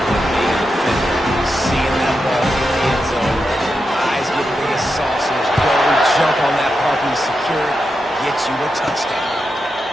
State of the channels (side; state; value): both; normal; correlation 0.87